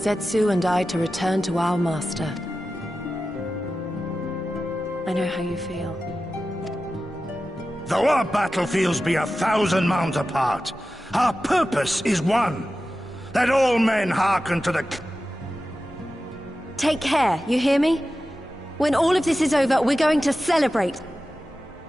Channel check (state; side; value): normal; both; correlation 0.93